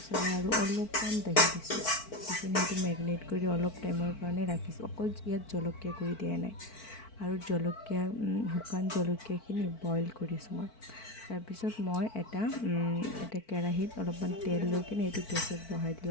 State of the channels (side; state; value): right; late; 4.5 ms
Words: আৰু অলপমান দহি দিছোঁ, দি কিনে সেইটো মেৰিনেট কৰি অলপ টাইমৰ কাৰণে ৰাখিছোঁ। অকল ইয়াত জলকীয়া গুড়ি দিয়া নাই, আৰু শুকান জলকীয়াখিনি বইল কৰিছোঁ মই। তাৰপিছত মই এটা কেৰাহীত অলপমান তেল লৈ কিনে এইটো গেছত বহাই দিলোঁ,